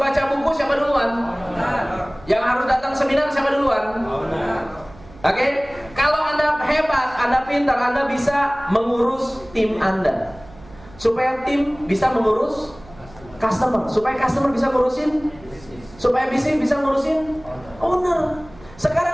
buku siapa duluan? Yang harus datang seminar siapa duluan? Oke? Kalau Anda hebat, Anda pintar, Anda bisa mengurus tim Anda. Supaya tim bisa mengurus customer, supaya customer bisa ngurusin, supaya bisnis bisa ngurusin owner.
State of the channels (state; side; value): noise; right; hum, 22 dB below the sound